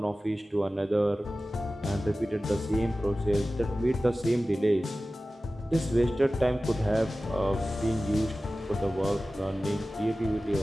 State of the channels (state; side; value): normal; both; correlation 0.96